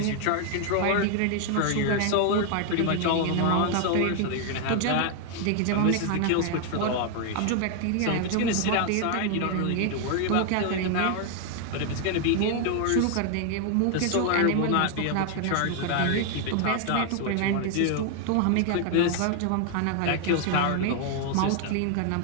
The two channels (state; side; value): different; both; correlation 0.00